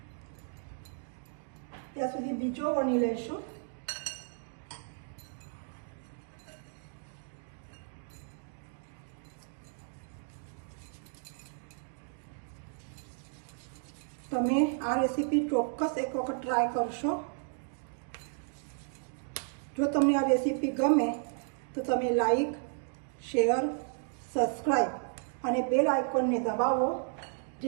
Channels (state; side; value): silent; left; 55 dB below the other